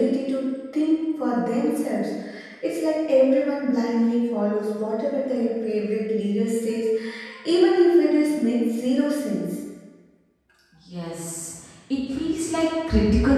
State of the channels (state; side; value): identical; both; correlation 1.00